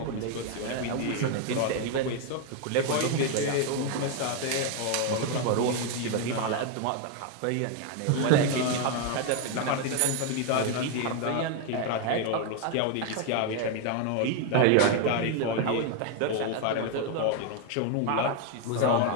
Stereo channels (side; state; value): both; different; correlation 0.01